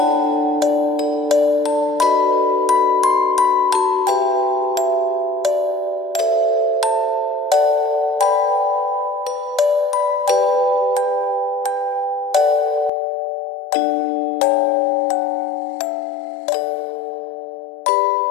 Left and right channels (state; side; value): drops out; right; at 12.9 s